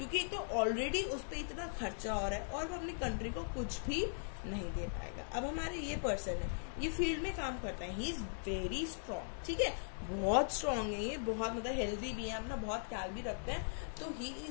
एक तो ऑलरेडी उस पर इतना खर्चा हो रहा है और वो अपनी कंट्री को कुछ भी नहीं दे पाएगा। अब हमारे ये पर्सन है, ये फील्ड में काम करता है, ही इज वेरी स्ट्रॉन्ग, ठीक है, बहुत स्ट्रॉन्ग है ये, बहुत मतलब हेल्दी भी है, अपना बहुत ख्याल भी रखते हैं। तो he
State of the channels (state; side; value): silent; right; digital silence